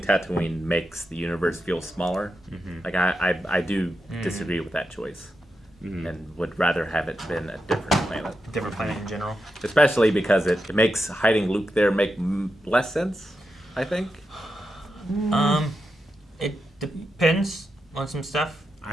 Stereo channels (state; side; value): normal; both; correlation 0.87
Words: makes the universe feel smaller. Like I do disagree with that choice, and would rather have it been a different planet. Different planet in general. Especially because it makes hiding Luke there make less sense, I think. It depends on some stuff.